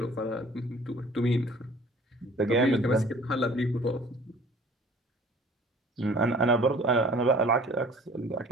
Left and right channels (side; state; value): both; normal; correlation 0.50